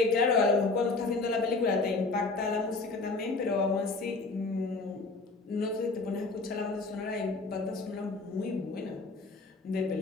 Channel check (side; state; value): right; quieter; 3.6 dB